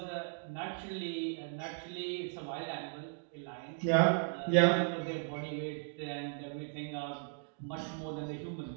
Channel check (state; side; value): silent; left; digital silence